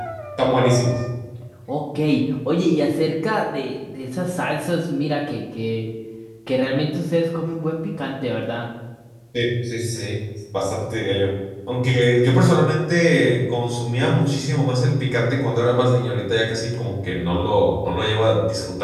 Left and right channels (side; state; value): both; identical; correlation 1.00